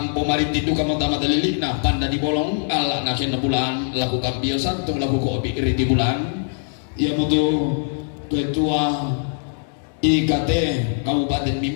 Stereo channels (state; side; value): silent; right; digital silence